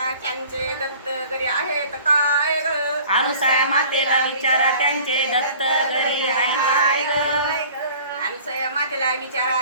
त्यांचे दत्त घरी आहेत काय ग? अनुसया मातेला विचारा त्यांचे दत्त घरी आहे काय ग. अनुसया मातेला विचारा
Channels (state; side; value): inverted; both; correlation -0.47